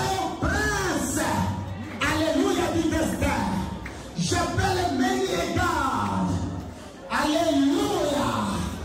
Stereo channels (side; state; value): both; identical; correlation 1.00